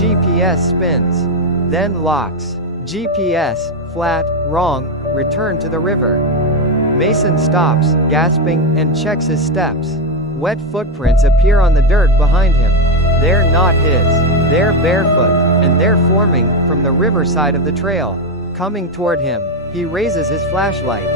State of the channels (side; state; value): both; normal; correlation 0.09